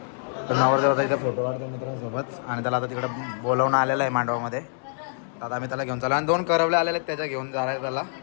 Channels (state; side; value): silent; right; digital silence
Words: तर नवरदेव आता इथे फोटो काढतो मित्रांसोबत आणि त्याला आता तिकडे बोलवणं आलेलं आहे मांडवामध्ये. आता आम्ही त्याला घेऊन चाललो आणि 2 करवले आलेले आहेत त्याच्या घेऊन जाणार त्याला.